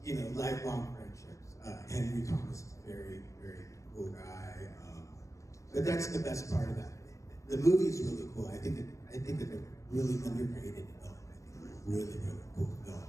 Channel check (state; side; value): late; right; 0.15 ms